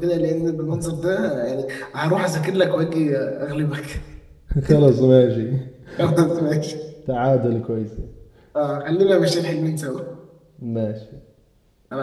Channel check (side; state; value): both; identical; correlation 1.00